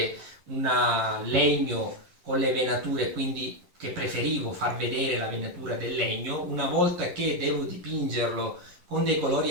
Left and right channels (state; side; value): late; left; 11 ms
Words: un legno con le venature, quindi che preferivo far vedere la venatura del legno, una volta che devo dipingerlo con dei colori